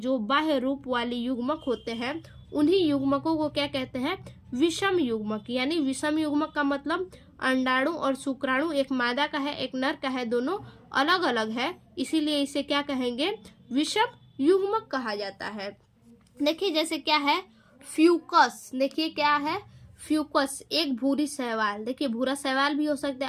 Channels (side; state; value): both; identical; correlation 1.00